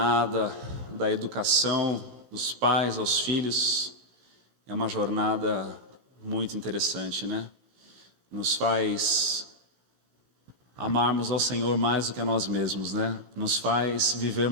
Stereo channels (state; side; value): late; left; 16 ms